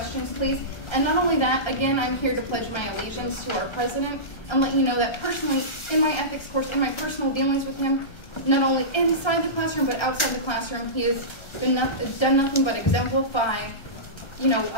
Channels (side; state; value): right; late; 1.3 ms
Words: please. And not only that, again, I'm here to pledge my allegiance to our president and let you know that personally, in my ethics course, in my personal dealings with him, not only inside the classroom but outside the classroom, he has done nothing but exemplify,